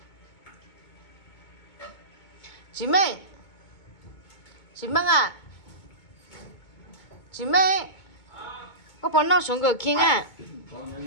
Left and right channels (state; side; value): late; right; 2.2 ms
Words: chị Minh à, chị Minh, có bọn nó xuống cửa kia à?